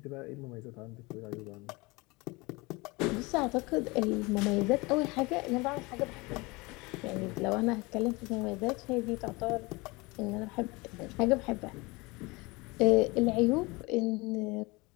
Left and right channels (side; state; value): right; quieter; 24.7 dB